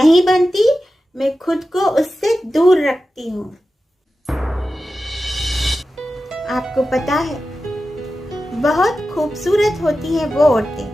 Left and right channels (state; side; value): normal; both; correlation 0.93